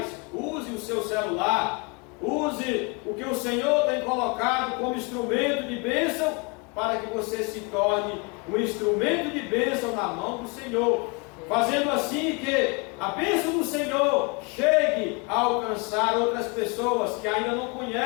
use o seu celular, use o que o Senhor tem colocado como instrumento de bênção, para que você se torne um instrumento de bênção na mão do Senhor, fazendo assim que a bênção do Senhor chegue a alcançar outras pessoas que ainda não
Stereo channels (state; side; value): quieter; right; 31.5 dB